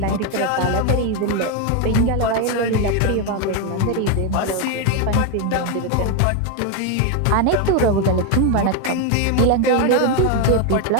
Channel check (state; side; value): different; both; correlation 0.01